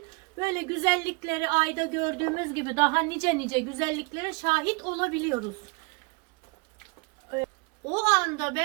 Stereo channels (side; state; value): left; quieter; 29.3 dB